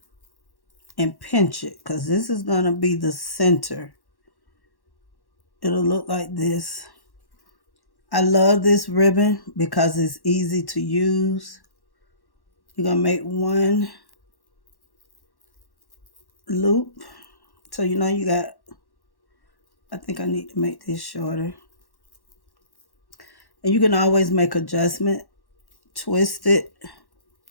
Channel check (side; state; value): right; late; 1.1 ms